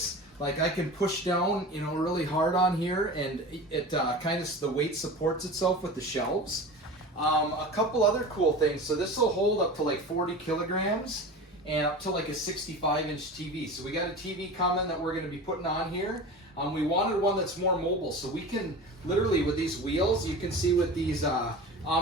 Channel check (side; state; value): both; normal; correlation 0.33